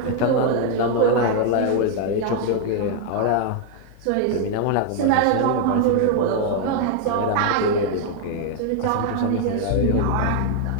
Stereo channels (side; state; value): both; different; correlation 0.00